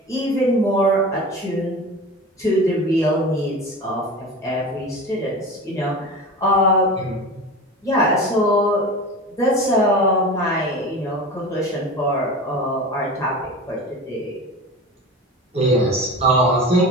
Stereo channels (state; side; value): normal; both; correlation 0.32